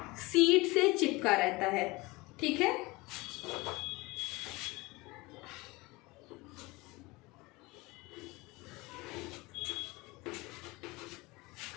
सीड से चिपका रहता है, ठीक है।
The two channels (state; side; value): quieter; right; 23.1 dB